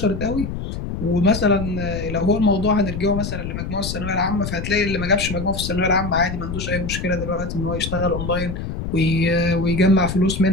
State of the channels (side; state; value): left; noise; rumble, 6 dB below the sound